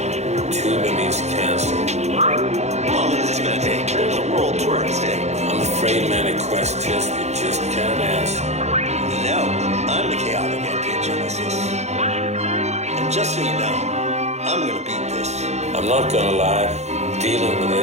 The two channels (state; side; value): late; left; 0.32 ms